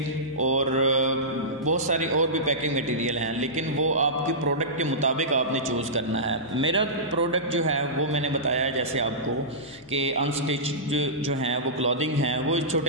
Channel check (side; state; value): both; normal; correlation -0.17